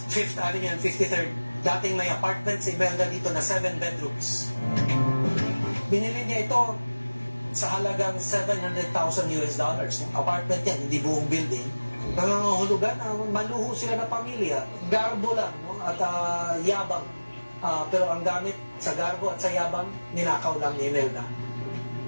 5th Avenue and 53rd. Dating may apartment si Imelda dito na 7 bedrooms. Binili niya ito sa halagang $700,000 US. Apartment yan, hindi buong building. Nangangahulugan, maluho sila na pamilya. Garbo lang, no? At yabang. Pero ang gamit sa garbo at sa yabang, ninakaw lang ni Imelda.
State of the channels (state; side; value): inverted; both; correlation -1.00